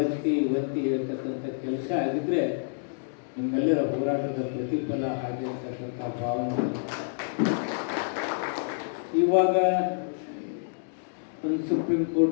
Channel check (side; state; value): right; silent; digital silence